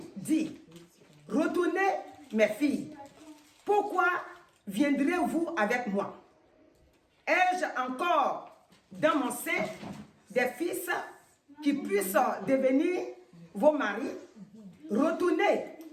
dit, retournez mes filles, pourquoi viendrez-vous avec moi? Ai-je encore dans mon sein des fils qui puissent devenir vos maris? Retournez,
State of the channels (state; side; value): identical; both; correlation 1.00